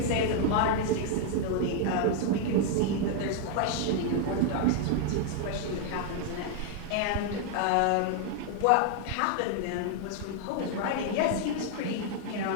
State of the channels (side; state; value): both; different; correlation 0.00